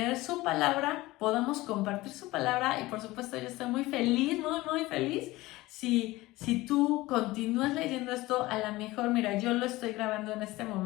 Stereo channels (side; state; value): right; quieter; 19.2 dB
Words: su palabra, podamos compartir su palabra y por supuesto yo estoy muy feliz, muy feliz si tú continúas leyendo esto. A lo mejor, mira, yo lo estoy grabando en este